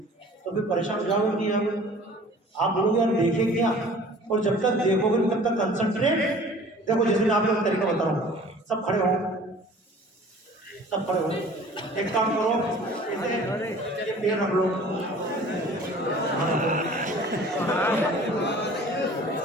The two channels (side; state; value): both; normal; correlation 0.47